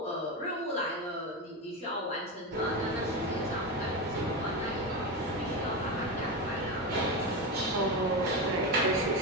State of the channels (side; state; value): both; normal; correlation 0.17